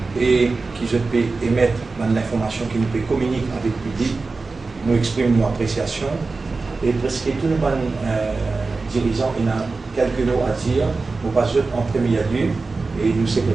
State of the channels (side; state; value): left; quieter; 3.9 dB